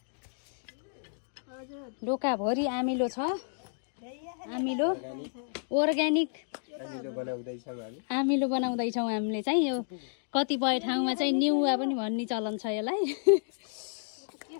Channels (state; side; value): silent; right; digital silence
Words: डोकाभरि आमिलो छ। आमिलो अर्ग्यानिक आमिलो बनाउँदैछौँ हामीले चाहिँ। यो कतिपय ठाउँमा चाहिँ निउवा पनि भन्ने चलन छ यसलाई।